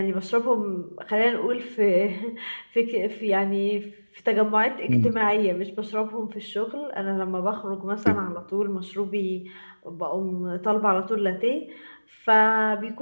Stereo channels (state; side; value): inverted; both; correlation -1.00